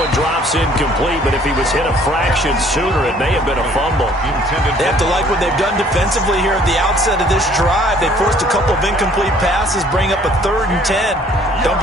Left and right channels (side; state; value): both; normal; correlation 0.58